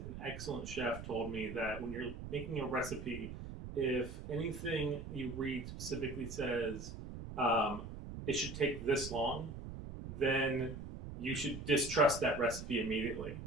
excellent chef told me that when you're making a recipe, if anything you read specifically says it should take this long, then you should distrust that recipe immediately.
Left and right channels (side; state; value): right; noise; rumble, 9 dB below the sound